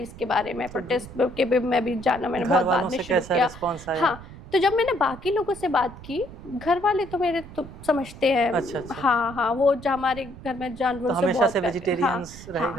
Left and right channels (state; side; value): noise; right; rumble, 16 dB below the sound